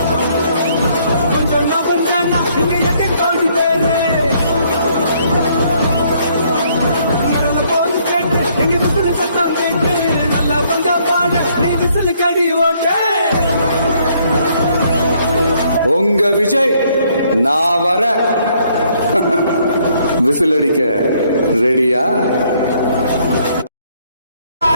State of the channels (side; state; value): both; inverted; correlation -0.67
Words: கொஞ்சம் நகர்ந்தானா இங்க எட்டு கோடி பேரு. இறந்த போது கேட்டு எங்க விசில சத்தம் கேட்டு, நல்லா வந்தா பாடு நீ விசில கடி ஓட்டு. உங்க விஜய் நான் வர விசில் அடிக்க ரெடியா?